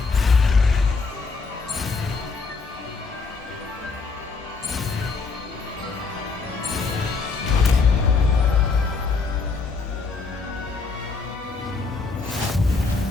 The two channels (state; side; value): quieter; right; 4.4 dB